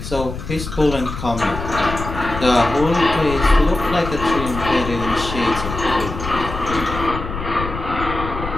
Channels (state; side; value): noise; left; rumble, 7 dB below the sound